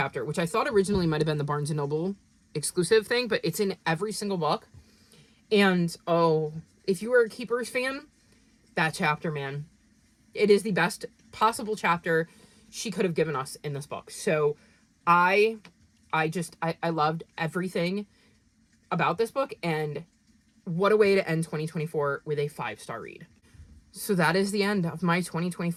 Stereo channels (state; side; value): identical; both; correlation 1.00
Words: which I thought originally might have been the Barnes & Noble exclusive thing, but it's in every single book. And, oh, if you were a Keepers fan, that chapter, man, it is the best possible chapter she could have given us in this book. So I loved everything about this book, and what a way to end 2024 with a 5-star read. So that is the end of my